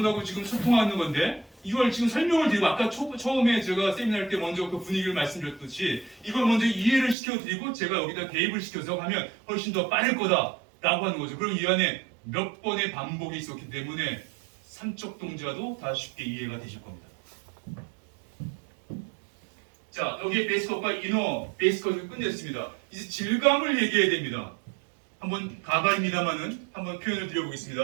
지금 소통하는 건데 이걸 지금 설명을 드리고 아까 처음에 제가 세미나 할 때 먼저 그 분위기를 말씀드렸듯이 이걸 먼저 이해를 시켜드리고 제가 여기다 개입을 시켜서 하면 훨씬 더 빠를 거다 라고 하는 거죠. 그럼 이 안에 몇 번의 반복이 있었기 때문에 삼척 동자도 다 쉽게 이해가 되실 겁니다. 자, 여기에 베이스컷과 이너 베이스컷을 끝냈습니다. 이제 질감을 얘기해야 됩니다. 한번 가발입니다만은 한번 표현을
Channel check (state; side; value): drops out; left; at 7.2 s